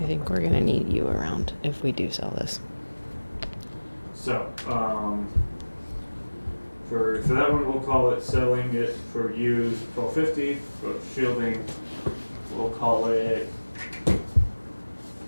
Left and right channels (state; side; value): inverted; both; correlation -1.00